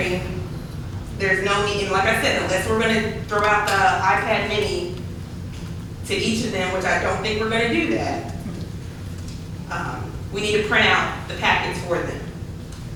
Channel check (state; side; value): identical; both; correlation 1.00